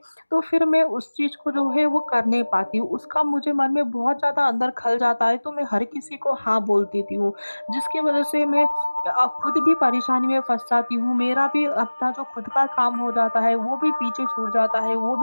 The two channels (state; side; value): inverted; both; correlation -1.00